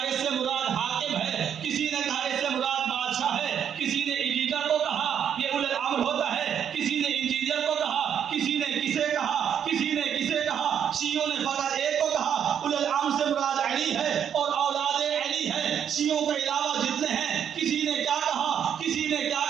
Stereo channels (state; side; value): quieter; left; 8.6 dB